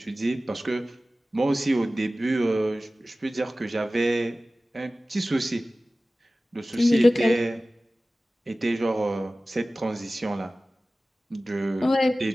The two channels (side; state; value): both; normal; correlation 0.97